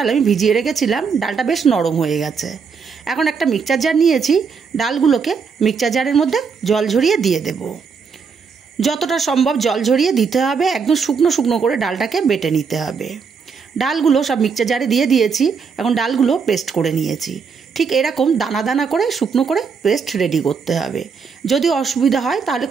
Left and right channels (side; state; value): left; quieter; 5.7 dB